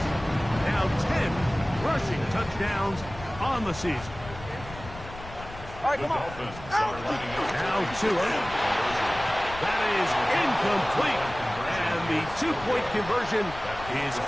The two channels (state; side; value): noise; left; rumble, 14 dB below the sound